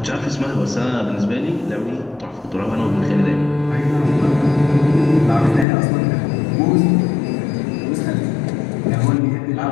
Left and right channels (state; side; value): drops out; right; at 5.7 s